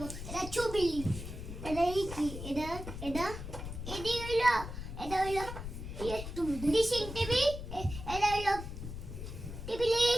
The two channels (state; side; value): noise; left; rumble, 8 dB below the sound